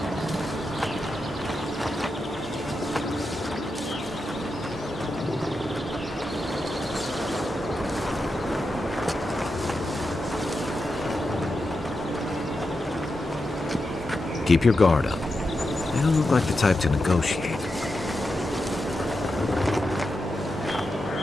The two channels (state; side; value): normal; both; correlation 0.88